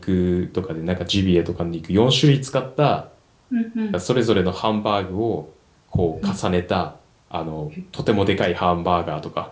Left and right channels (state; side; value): identical; both; correlation 1.00